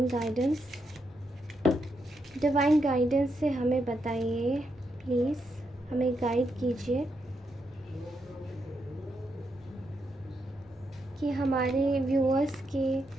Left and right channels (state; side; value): normal; both; correlation 0.81